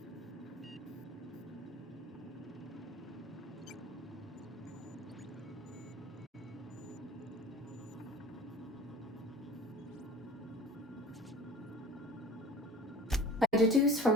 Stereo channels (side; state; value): both; normal; correlation 0.41